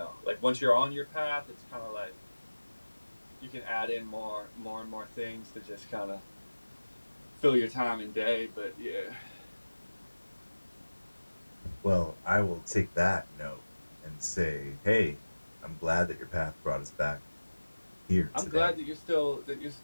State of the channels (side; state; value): both; inverted; correlation -1.00